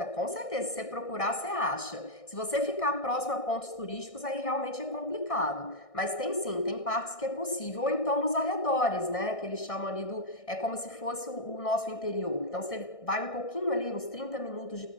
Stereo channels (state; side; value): late; right; 1.6 ms